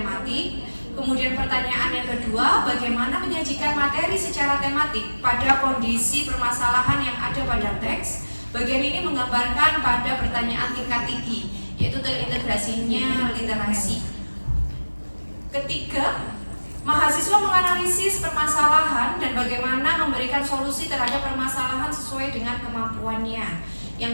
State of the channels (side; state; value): both; inverted; correlation -1.00